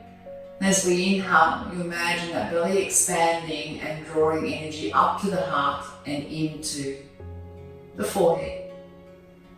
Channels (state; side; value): identical; both; correlation 1.00